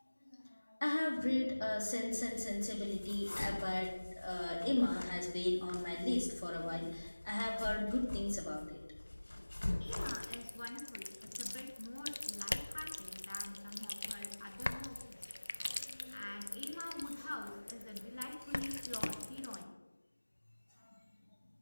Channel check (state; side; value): inverted; both; correlation -1.00